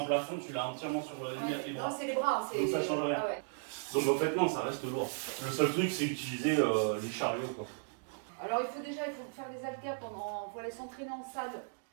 un plafond, tu l'as entièrement sur les Ouais. bras. Non, c'est les bras. Donc ça change rien. Ah ouais. Donc en fait, non, ça reste lourd. Le seul truc, c'est utiliser les chariots. Quoi. Alors il faut faire des haltères pendant. Faut aller s'entraîner en salle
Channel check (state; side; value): silent; left; digital silence